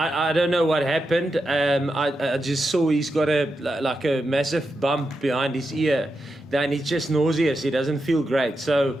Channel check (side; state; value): both; normal; correlation 0.87